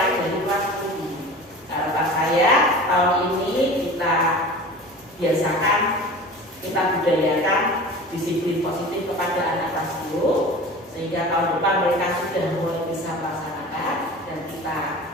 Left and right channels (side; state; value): both; normal; correlation 0.37